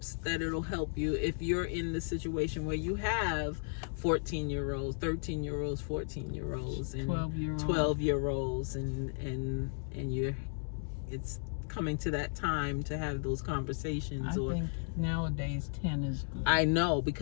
that it'll help you if you're in the situation where you have 14-year-olds, 13-year-olds, 14-year-olds, and 12-year-olds, and it's coming to that time to have those conversations. I think nowadays 10 is good. I know,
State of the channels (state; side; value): silent; right; digital silence